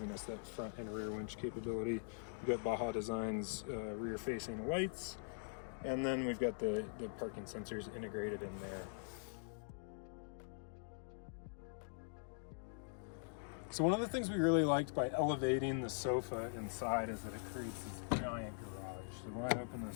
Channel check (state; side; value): silent; right; digital silence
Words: us that front and rear winch capability. We've got Baja Designs rear facing lights, and then we've got the parking sensors integrated in there. So one of the things we really liked by elevating the sofa inside is that it creates this giant garage. So when I open